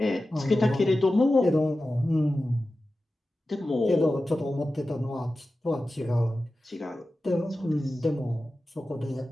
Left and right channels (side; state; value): both; normal; correlation 0.94